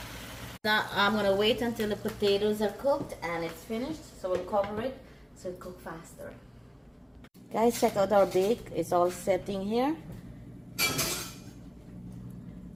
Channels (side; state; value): both; identical; correlation 1.00